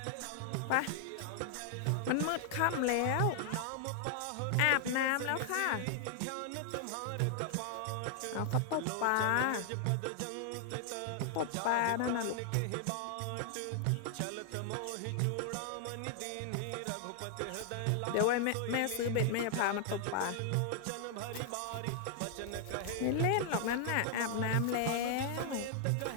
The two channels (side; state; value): both; different; correlation 0.00